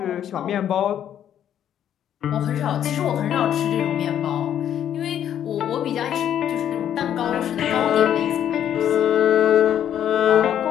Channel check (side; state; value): right; quieter; 10.1 dB